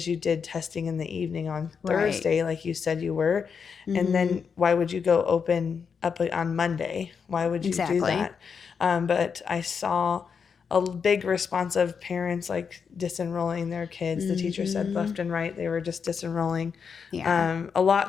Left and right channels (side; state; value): right; quieter; 6.2 dB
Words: you did testing in the evening on Thursday, like you said you were, and then why would you go open up on Monday? Why would you do that? But I saw a big response of parents like disenrolling their kids. The teacher said left and right they were just disenrolling. A